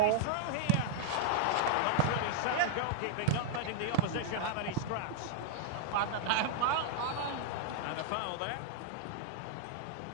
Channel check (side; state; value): both; different; correlation -0.01